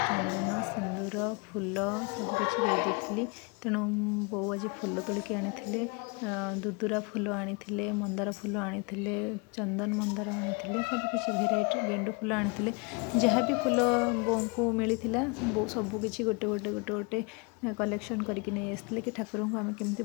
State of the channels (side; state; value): right; quieter; 31.0 dB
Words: सिंदूर फूल सबकि देती। तेणु बो आज फूल तोलिक आनी दुदुरा फूल आनी मंदार फूल आनी चंदन मंदार आनी सबकि भेराइट गेंडु फूल आनी जहाँ भी फूल बो को मिलता बो सबकि गोटे गोटे गोटे गोटे कलेक्शन करके नहीं आसते कि ठाकुर को आम केमती